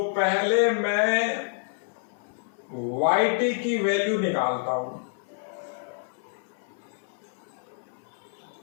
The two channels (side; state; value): right; silent; 59 dB below the other